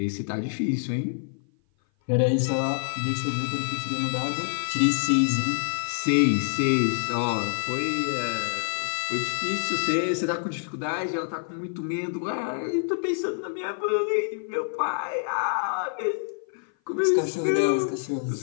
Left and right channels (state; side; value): silent; right; 56 dB below the other